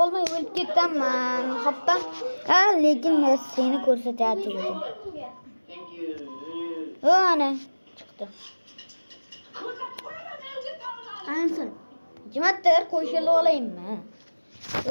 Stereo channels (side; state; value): both; inverted; correlation -1.00